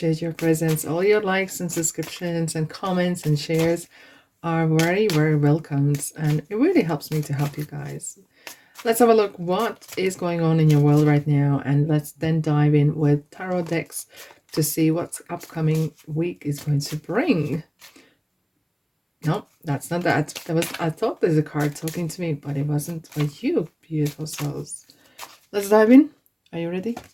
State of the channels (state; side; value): identical; both; correlation 1.00